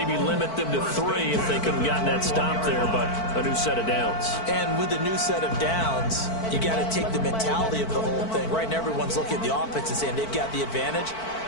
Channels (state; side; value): late; right; 4.5 ms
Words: limit them to 3 if they couldn't gotten that stop there, but a new set of downs. And with a new set of downs, you got to take the mentality of the whole thing. Right now, everyone's looking at the offense and saying they've got the advantage.